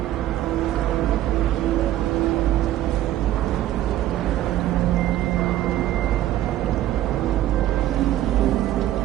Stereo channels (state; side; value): quieter; left; 13.5 dB